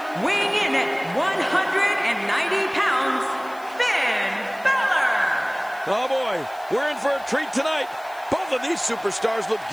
weighing in at 190 pounds, Finn Balor. Oh boy, we're in for a treat tonight. Both of these superstars look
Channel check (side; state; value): left; noise; hiss, 24 dB below the sound